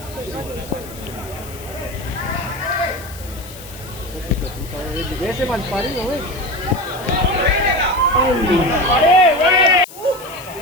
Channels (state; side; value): noise; left; hiss, 17 dB below the sound